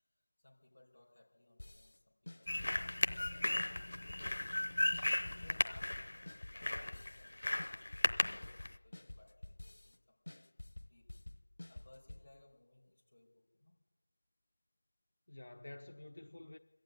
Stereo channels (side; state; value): both; inverted; correlation -1.00